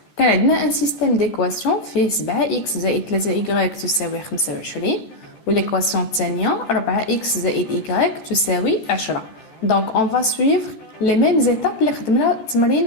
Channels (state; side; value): late; right; 14 ms